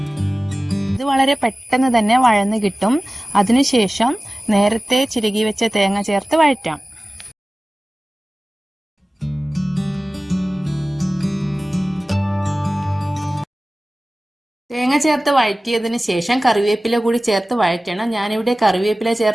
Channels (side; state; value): both; normal; correlation 0.97